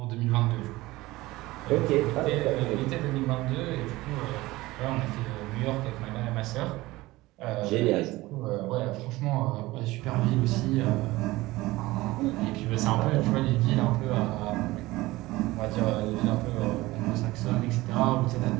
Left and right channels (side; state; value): left; quieter; 19.2 dB